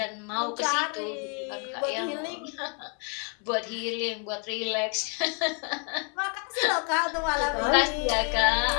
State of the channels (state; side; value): quieter; right; 38.2 dB